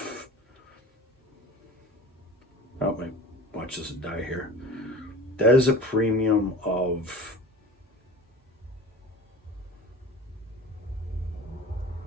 oh my, watch this die here. That is a premium of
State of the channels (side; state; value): both; normal; correlation 0.38